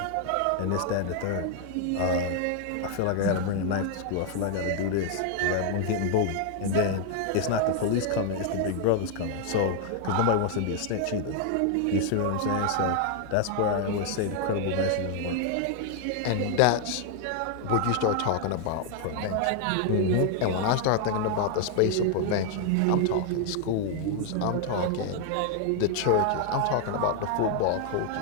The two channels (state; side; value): different; both; correlation 0.00